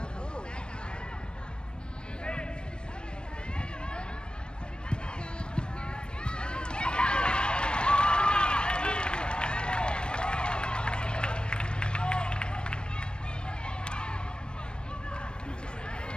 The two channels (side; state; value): right; late; 0.053 ms